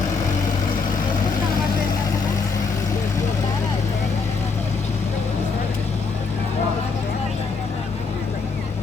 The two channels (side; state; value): right; quieter; 4.7 dB